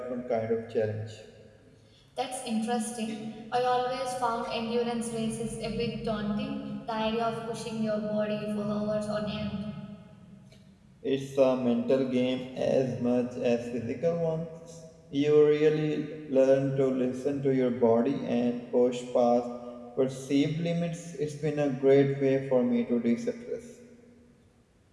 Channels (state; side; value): identical; both; correlation 1.00